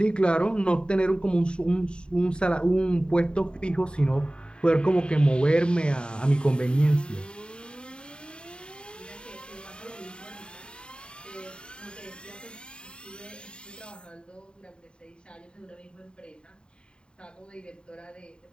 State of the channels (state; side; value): late; right; 0.051 ms